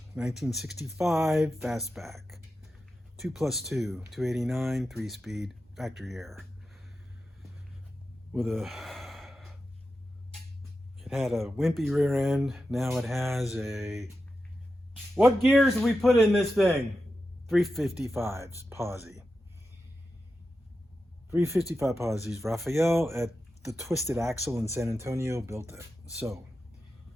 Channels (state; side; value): normal; both; correlation 0.90